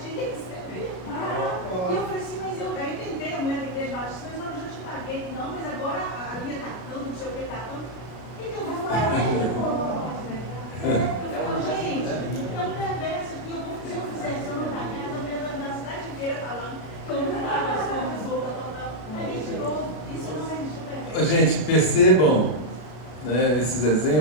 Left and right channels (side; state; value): right; late; 33 ms